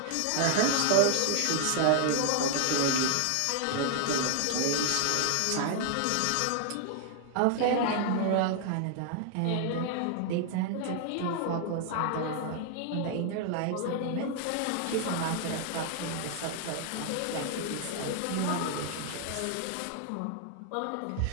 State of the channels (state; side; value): different; both; correlation 0.00